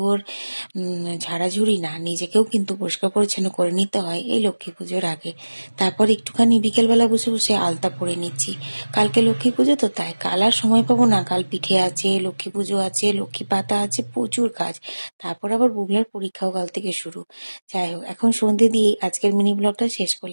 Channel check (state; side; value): inverted; both; correlation -1.00